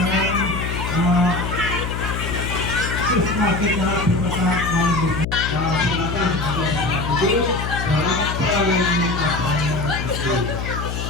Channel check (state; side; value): noise; left; hum, 4 dB below the sound